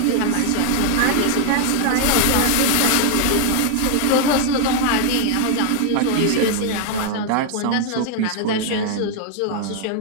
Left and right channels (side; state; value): both; different; correlation 0.00